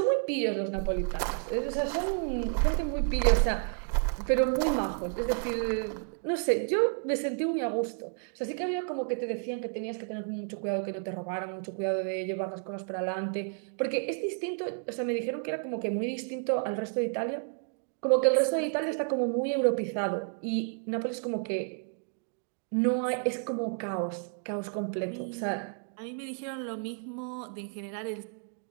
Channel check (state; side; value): silent; left; 56 dB below the other